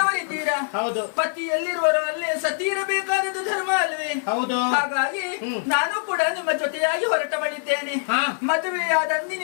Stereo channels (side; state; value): right; silent; 57 dB below the other